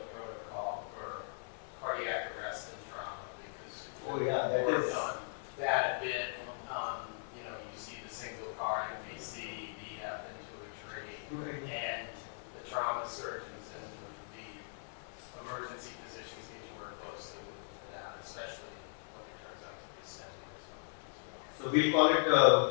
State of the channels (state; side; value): silent; right; 52 dB below the other